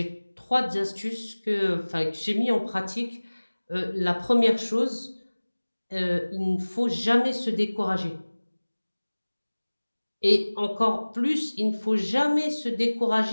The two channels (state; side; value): inverted; both; correlation -1.00